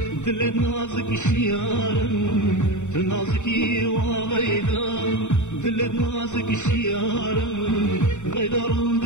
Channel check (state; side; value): late; right; 0.84 ms